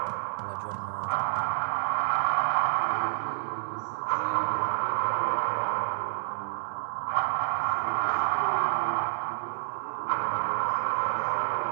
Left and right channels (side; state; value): left; silent; 59 dB below the other